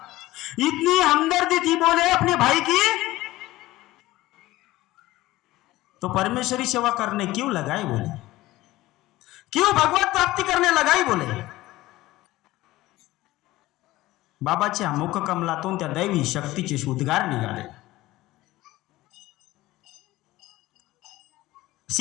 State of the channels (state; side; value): quieter; right; 17.5 dB